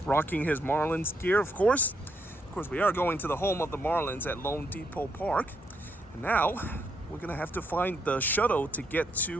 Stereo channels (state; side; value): normal; both; correlation 0.76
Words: rocking his Marlins gear, of course. Of course, we are going to the home of the Marlins at Lone Depot Park. And now, we're going to have to find the shuttle to get